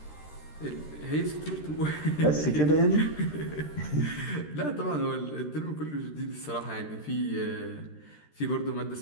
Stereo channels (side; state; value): right; late; 13 ms